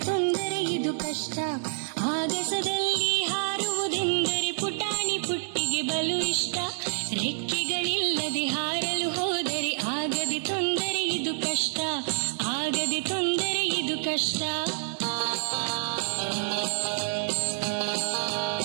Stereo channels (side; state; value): left; silent; 56 dB below the other